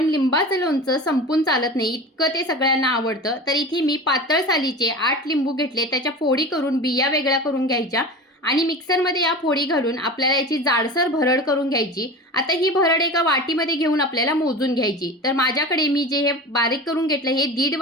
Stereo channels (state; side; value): normal; both; correlation 0.32